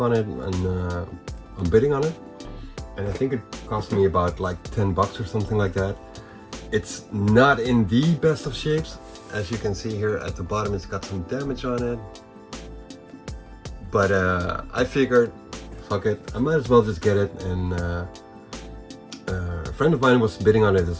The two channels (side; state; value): both; identical; correlation 1.00